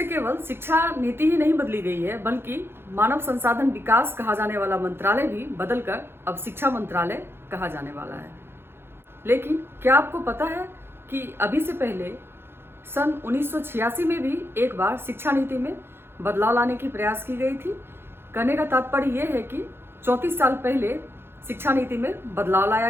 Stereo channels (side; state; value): left; late; 0.11 ms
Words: केवल शिक्षा नीति ही नहीं बदली गई है, बल्कि मानव संसाधन विकास कहा जाने वाला मंत्रालय भी बदलकर अब शिक्षा मंत्रालय कहा जाने वाला है। लेकिन क्या आपको पता है कि अभी से पहले सन 1986 में भी एक बार शिक्षा नीति में बदलाव लाने की प्रयास की गई थी। कहने का तात्पर्य यह है कि 34 साल पहले शिक्षा नीति में बदलाव लाया